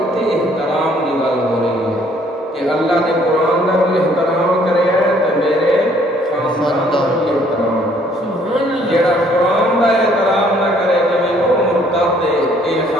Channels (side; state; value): both; normal; correlation 0.62